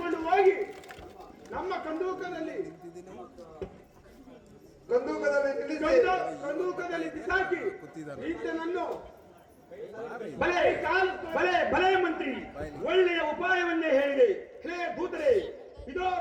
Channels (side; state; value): both; identical; correlation 1.00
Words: ಹೋಗಿ ನಮ್ಮ ಕಂದೂಕದಲ್ಲಿ ಬಿಸಾಕಿ ಈತನನ್ನು ಭಲೆ ಭಲೆ ಭಲೆ ಮಂತ್ರಿ, ಒಳ್ಳೆಯ ಉಪಾಯವನ್ನೇ ಹೇಳಿದೆ. ಹೇ ದೂತರೇ, ಇದೋ